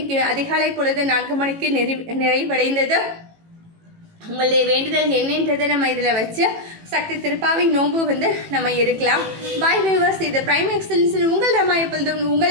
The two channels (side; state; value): left; late; 18 ms